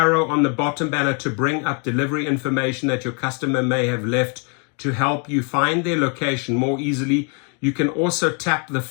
on the bottom banner to bring up delivery information that your customer may have left to help you find their location more easily. You can also tap the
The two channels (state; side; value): quieter; right; 38.3 dB